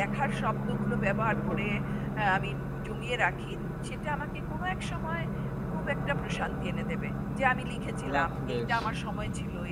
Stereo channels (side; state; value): both; identical; correlation 1.00